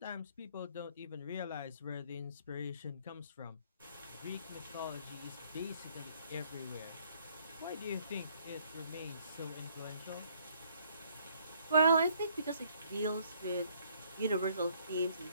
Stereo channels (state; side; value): inverted; both; correlation -0.64